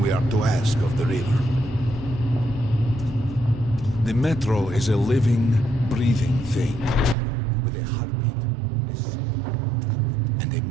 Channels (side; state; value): left; drops out; at 7.2 s